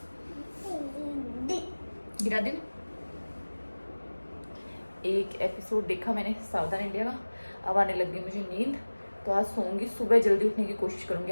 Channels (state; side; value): inverted; both; correlation -1.00